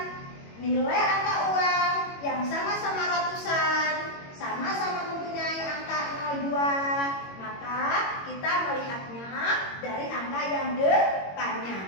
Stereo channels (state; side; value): late; right; 21 ms